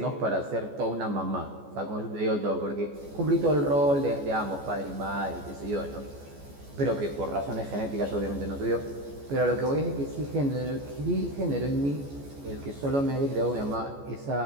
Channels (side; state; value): left; late; 14 ms